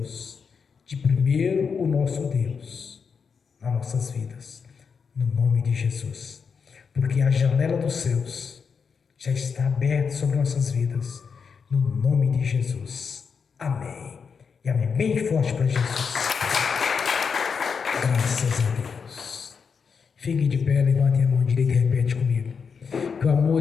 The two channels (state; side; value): quieter; right; 5.9 dB